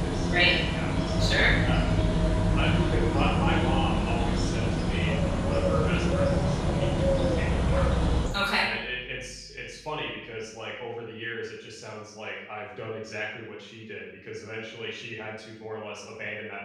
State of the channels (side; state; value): both; identical; correlation 1.00